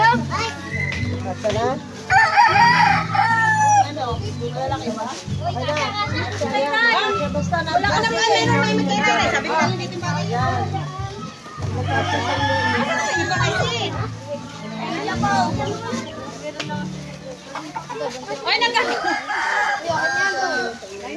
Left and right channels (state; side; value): identical; both; correlation 1.00